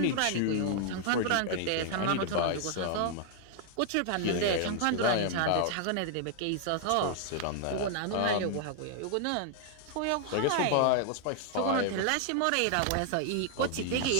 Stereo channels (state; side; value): different; both; correlation 0.00